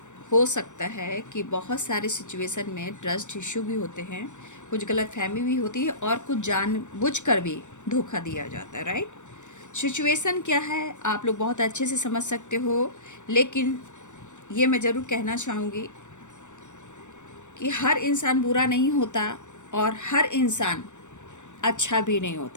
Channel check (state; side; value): late; right; 0.85 ms